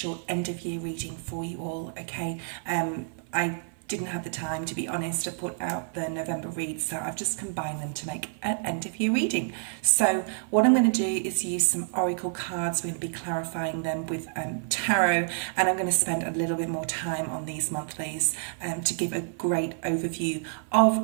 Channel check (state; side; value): silent; left; 57 dB below the other